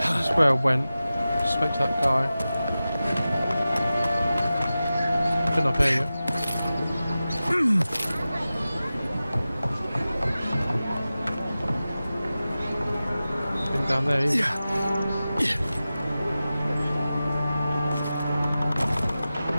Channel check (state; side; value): inverted; both; correlation -0.95